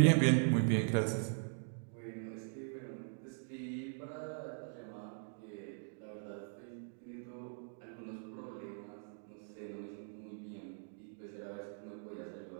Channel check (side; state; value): left; silent; digital silence